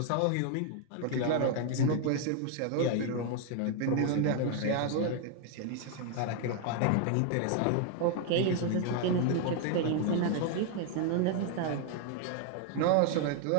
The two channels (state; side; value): different; both; correlation 0.00